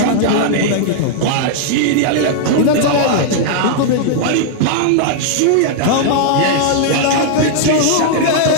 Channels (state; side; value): different; both; correlation -0.01